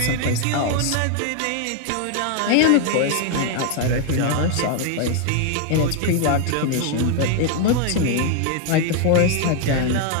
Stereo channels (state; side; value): different; both; correlation 0.01